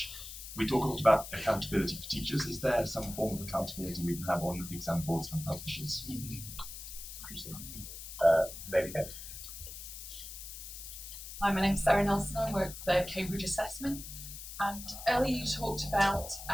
We talk a lot about accountability for teachers. Is there some form of accountability we can have on exam boards and publishers? Hi, my name's Sarah Nelson. I work for Cambridge Assessment. And earlier you talked about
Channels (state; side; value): noise; left; hiss, 11 dB below the sound